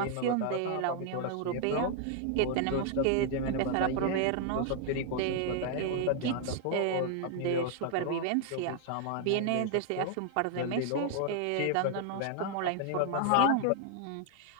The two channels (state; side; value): different; both; correlation 0.00